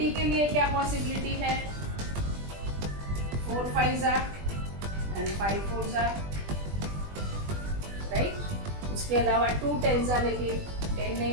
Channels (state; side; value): late; left; 20 ms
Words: के लिए क्या पॉसिबिलिटी है? 4 5 जा एंड 5 4 जा, राइट? उसके अलावा 2 10 जा, लेकिन 10 नहीं